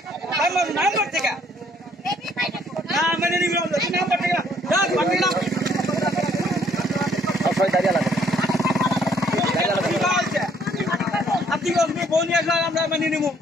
নাম্বার থেকে না মানে নিবি নাম্বার থেকে দাঁড়িয়ে লাগে আপনি ফোন নিয়ে আসলে আমরা মানিয়ে নিবো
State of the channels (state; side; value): normal; both; correlation 0.64